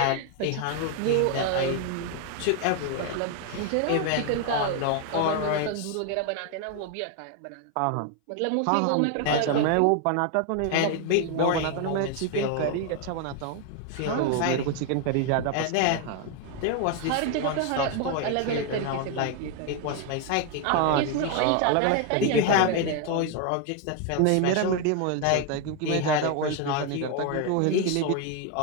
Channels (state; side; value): different; both; correlation 0.01